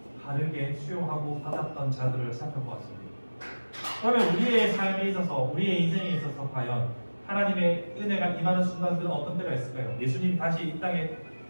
바르게 수용하고 받았던 자들을 살펴보았습니다. 그러면 우리의 삶에 있어서, 우리의 인생에 있어서 과연 하나님의 은혜가 임하는 순간들은 어떤 때가 있을까요? 예수님이 다시 이 땅에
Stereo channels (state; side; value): inverted; both; correlation -1.00